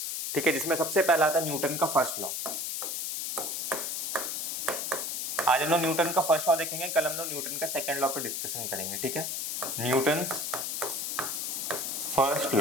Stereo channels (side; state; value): left; noise; hiss, 2 dB below the sound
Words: ठीक है, जिसमें सबसे पहला आता है न्यूटन का फर्स्ट लॉ। आज हम लोग न्यूटन का फर्स्ट लॉ देखेंगे, कल हम लोग न्यूटन का सेकंड लॉ पे डिस्कशन करेंगे। ठीक है, न्यूटन्स फर्स्ट